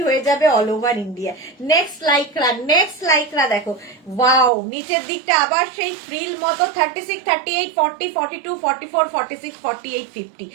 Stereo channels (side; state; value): left; drops out; at 4.5 s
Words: হয়ে যাবে all over India. Next lycra দেখো, ওয়াও, নিচের দিকটা আবার সেই ফ্রিল মতো। 36, 38, 40, 42, 44, 46, 48, 50,